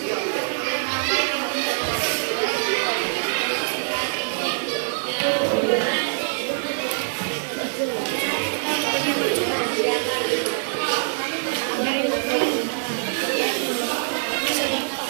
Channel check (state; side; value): silent; left; digital silence